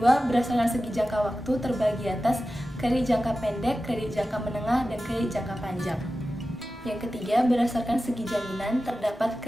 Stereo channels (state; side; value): normal; both; correlation 0.94